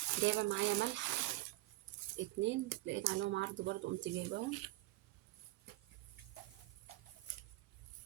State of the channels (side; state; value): left; quieter; 18.9 dB